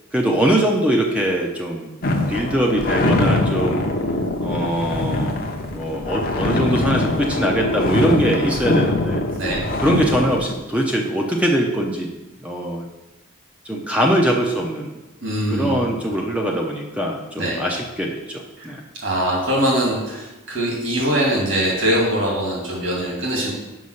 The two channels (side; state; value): both; normal; correlation 0.50